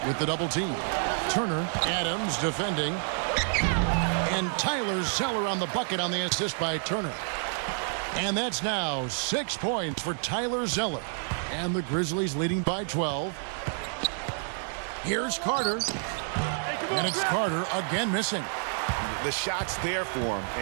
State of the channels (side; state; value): left; silent; 59 dB below the other